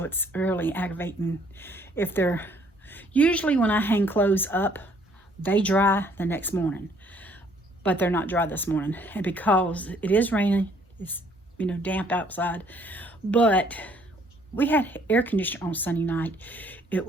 it's really aggravating. Usually when I hang clothes up, they dry the next morning, but they're not dry this morning. And because it is raining, it's damp outside, but we had air conditioner on Sunday night. It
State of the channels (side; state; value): both; normal; correlation 0.63